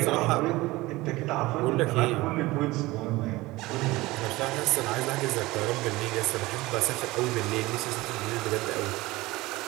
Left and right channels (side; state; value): left; quieter; 19.9 dB